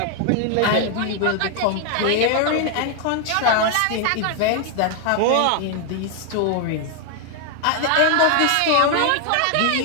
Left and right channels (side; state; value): both; different; correlation 0.00